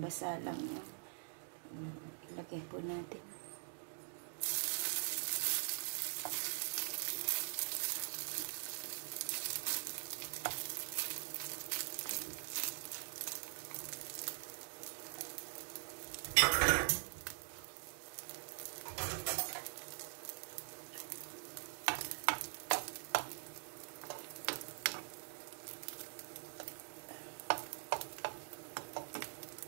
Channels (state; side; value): silent; left; digital silence